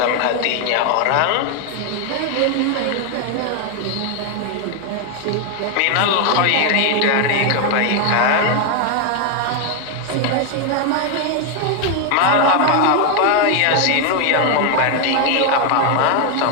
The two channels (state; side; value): different; both; correlation 0.01